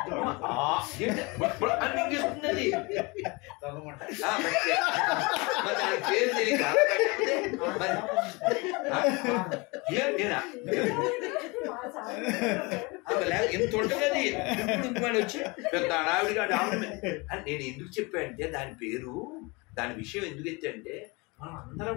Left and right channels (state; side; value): quieter; right; 26.8 dB